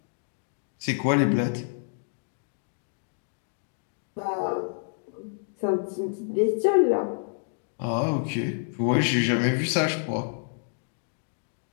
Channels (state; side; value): silent; right; digital silence